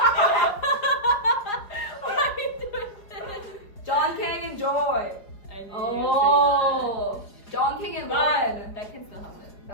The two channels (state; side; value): late; right; 4.9 ms